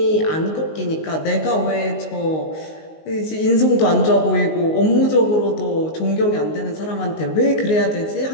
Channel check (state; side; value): late; right; 19 ms